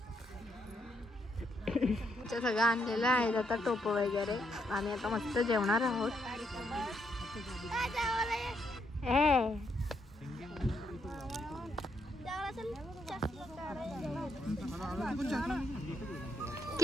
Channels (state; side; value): normal; both; correlation 0.76